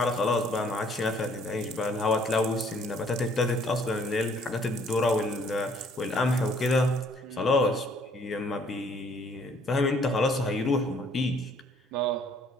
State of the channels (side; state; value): both; normal; correlation 0.62